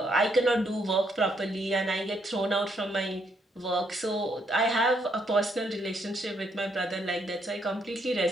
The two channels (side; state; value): both; normal; correlation 0.74